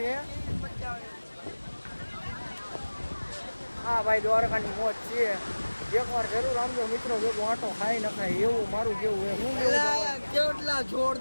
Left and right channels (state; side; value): inverted; both; correlation -1.00